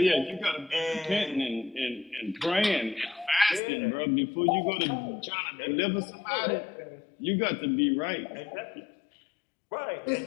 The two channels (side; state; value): right; drops out; at 3.6 s